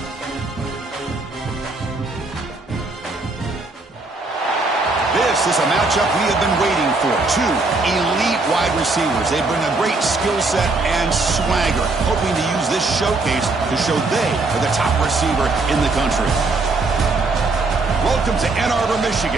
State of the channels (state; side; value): quieter; left; 3.4 dB